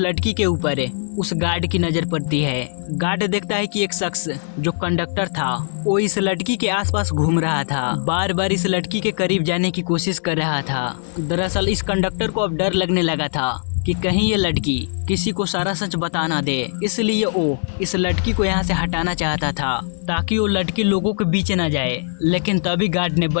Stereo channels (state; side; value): silent; right; 64 dB below the other